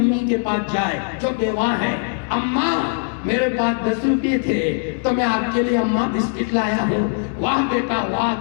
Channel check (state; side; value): silent; right; 65 dB below the other